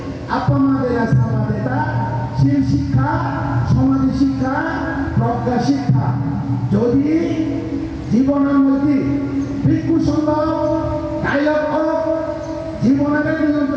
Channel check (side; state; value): both; identical; correlation 1.00